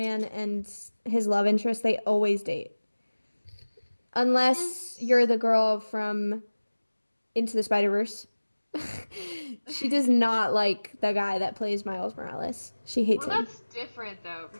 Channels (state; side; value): inverted; both; correlation -1.00